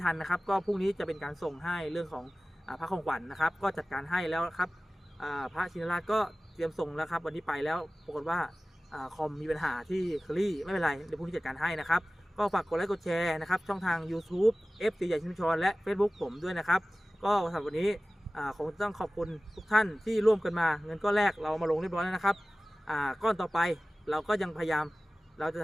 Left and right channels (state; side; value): normal; both; correlation 0.97